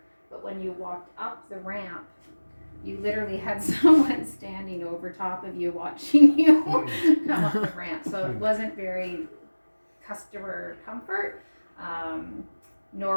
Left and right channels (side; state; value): both; inverted; correlation -1.00